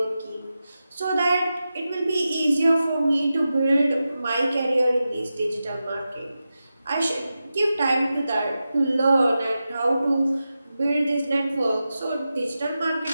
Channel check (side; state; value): both; inverted; correlation -0.92